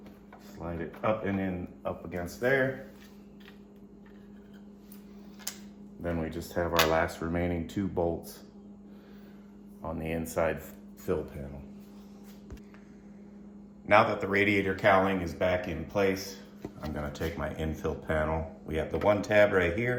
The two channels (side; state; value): both; identical; correlation 1.00